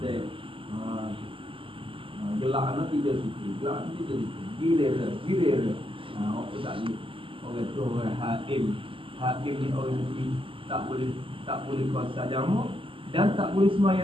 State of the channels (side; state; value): left; late; 0.25 ms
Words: dia. Gelak anak tidak situ, Gilir. Apa tak ni? Orang tu orang hakim. Hakim ni orang mesti tak boleh kuasa jamak dan tak boleh